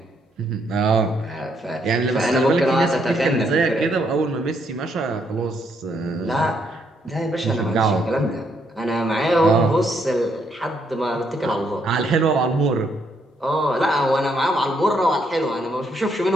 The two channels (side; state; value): both; normal; correlation 0.74